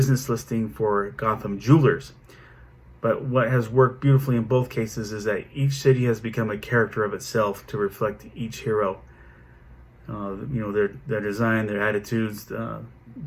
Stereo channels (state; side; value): identical; both; correlation 1.00